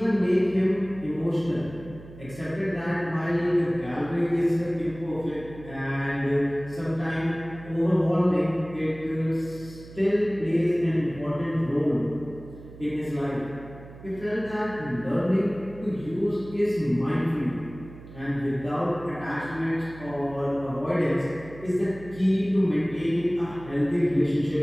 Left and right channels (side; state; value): right; noise; hum, 17 dB below the sound